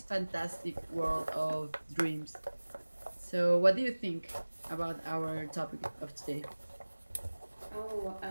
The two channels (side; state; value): both; inverted; correlation -1.00